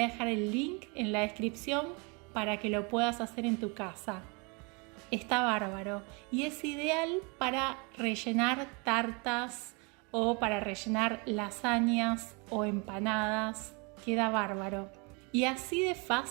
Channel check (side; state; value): left; quieter; 31.3 dB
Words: dejar el link en la descripción para que lo puedas hacer en tu casa. Está bárbaro y es ideal para rellenar tartas o para rellenar lasañas o empanadas, queda bárbaro. Y así de